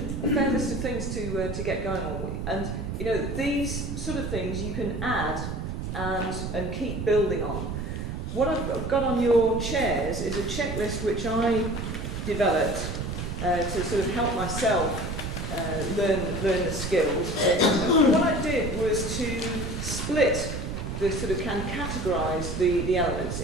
fair list of things to get going on with. And, you know, these sort of things you can add and keep building on. What I've got on your chairs is a checklist which I developed to sort of help myself learn the skills. And what I did was to split categorise the elements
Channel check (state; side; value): noise; right; rumble, 4 dB below the sound